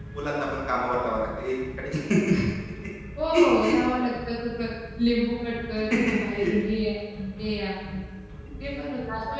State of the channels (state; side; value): identical; both; correlation 1.00